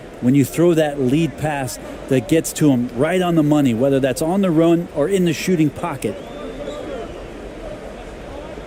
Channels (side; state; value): both; identical; correlation 1.00